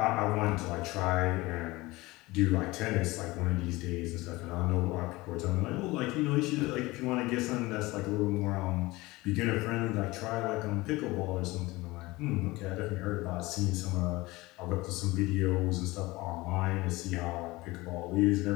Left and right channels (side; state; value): right; quieter; 20.9 dB